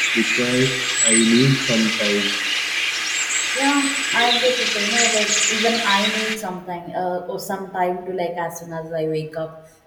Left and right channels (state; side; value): identical; both; correlation 1.00